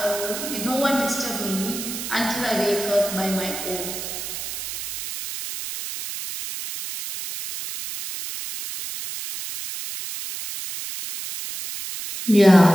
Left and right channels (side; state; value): right; noise; hiss, 7 dB below the sound